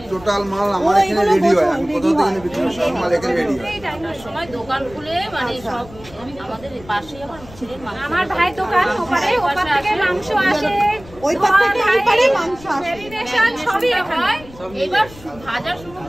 টোটাল মাল আমার ও, এখানে এগুলো রেডি হয়। বোঝো, আমি ready কোথাও থেকে হয়। বিক্রি সব মাল এখানে রেডি হয়। সময় দোকান খুলে মানে আচ্ছা। সব আমাদের পাশেই আমার ছেলের মাংস। আমার ভাই দোকান ওপারে, ওপার থেকে মাংস আসে, ওই পার থেকে এই পারে মাংস আসে। ম্যারিনেশন সবই হয়। এবার ভাজা শুরু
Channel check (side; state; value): left; noise; rumble, 20 dB below the sound